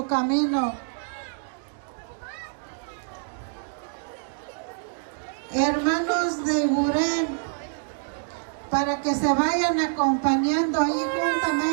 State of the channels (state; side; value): silent; left; digital silence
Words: camino. Hermanos de Gurén, para que se vayan acompañando ahí